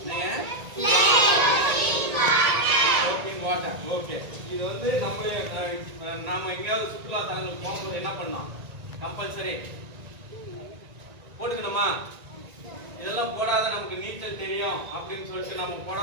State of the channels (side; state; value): left; late; 1.9 ms